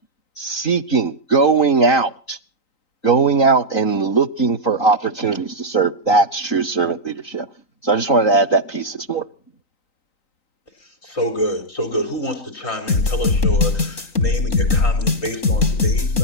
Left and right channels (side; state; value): right; late; 3.9 ms